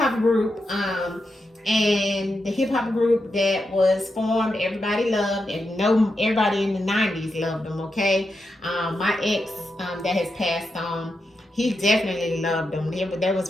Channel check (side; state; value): both; normal; correlation 0.86